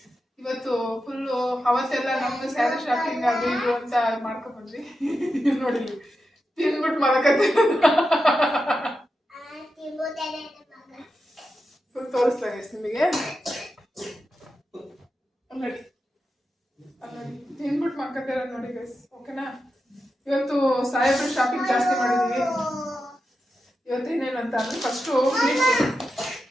ಇವತ್ತು ಫುಲ್ಲು ಅವತ್ತೆಲ್ಲ ನಮ್ದು ಸ್ಯಾರಿ ಶಾಪಿಂಗ್ ಅದು ಇದು ಅಂತ ಮಾಡ್ಕೊಂಡ್ ಬಂದ್ವಿ. ನೋಡಿ ತಿನ್ಬಿಟ್ಟು ಮಲಕತ್ತೆ. ಫುಲ್ ತೋರಿಸ್ಲಾ ಗೈಸ್ ನಿಮಗೆ. ನೋಡಿ ತಿನ್ಬಿಟ್ಟು ಮಲ್ಕತ್ತೆ ನೋಡಿ ಗೈಸ್. ಓಕೆನಾ? ಇವತ್ತು ಸಾಹೇಬ್ರು ಶಾಪಿಂಗ್ ಜಾಸ್ತಿ ಮಾಡಿದೀವಿ. ಇವತ್ತು ಏನೇನಂತ ಅಂದ್ರೆ ಫಸ್ಟು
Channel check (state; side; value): normal; both; correlation 0.89